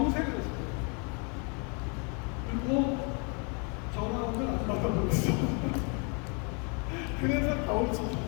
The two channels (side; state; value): right; quieter; 35.7 dB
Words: 했어요. 그리고 전화오면 안 받아버렸어. 그래서 가오를